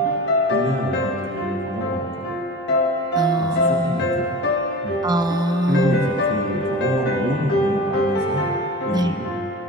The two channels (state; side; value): normal; both; correlation 0.35